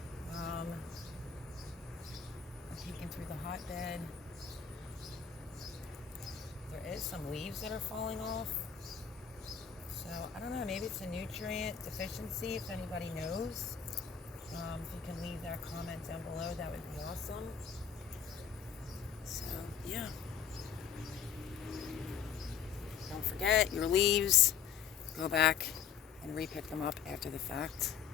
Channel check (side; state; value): right; quieter; 7.3 dB